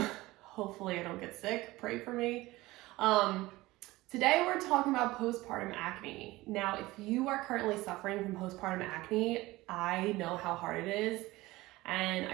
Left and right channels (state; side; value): quieter; left; 19.3 dB